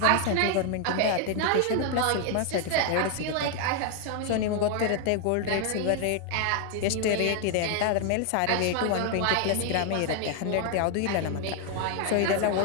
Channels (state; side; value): different; both; correlation 0.00